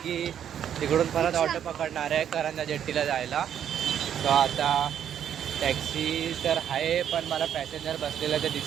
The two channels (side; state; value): left; quieter; 9.4 dB